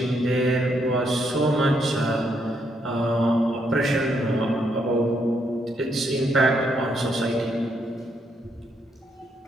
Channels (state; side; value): normal; both; correlation 0.75